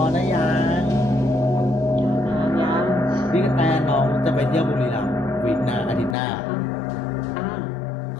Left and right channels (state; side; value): drops out; right; at 6.2 s